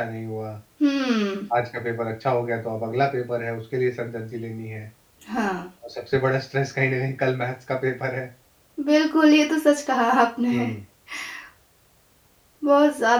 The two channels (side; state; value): both; identical; correlation 1.00